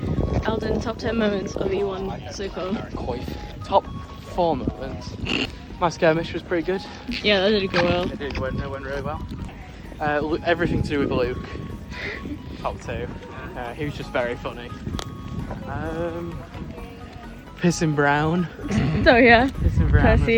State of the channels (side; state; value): both; identical; correlation 1.00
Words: Alden, top 10 moments of E1 so far. Top 4 moments. My skirmish was pretty good. Yeah, that did go well. It went really well. Everything to do with Luke. Top 2. He was just very funny. Pissing Brown. So yeah, Pissing Brown. Percy